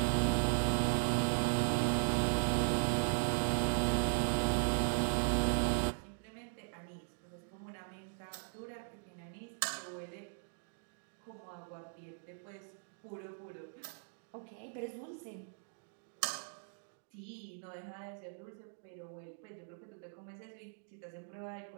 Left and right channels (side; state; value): left; silent; digital silence